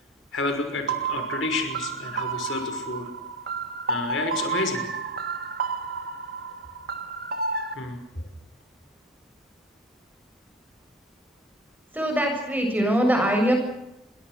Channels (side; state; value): both; normal; correlation 0.35